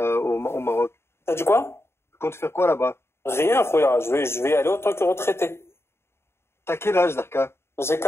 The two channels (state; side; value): late; right; 0.12 ms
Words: au Maroc? T'as dit quoi? Tu comptes faire quoi là-bas? Rien, Khouya. Je vais y aller autant que retraité. T'as quel âge, Darka? J'ai